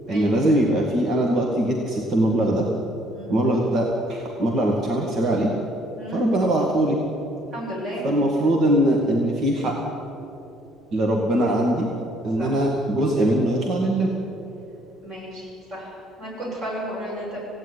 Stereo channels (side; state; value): both; normal; correlation 0.64